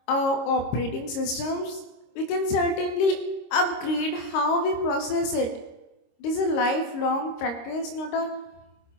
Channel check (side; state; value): right; late; 26 ms